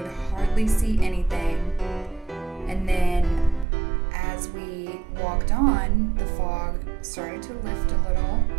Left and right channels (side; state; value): left; drops out; at 3.7 s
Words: hardly see anything. And then as we walked on, the fog started to lift a little.